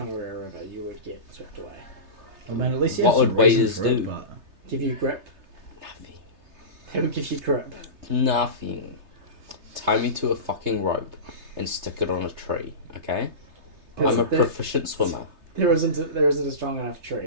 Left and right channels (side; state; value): left; late; 3.3 ms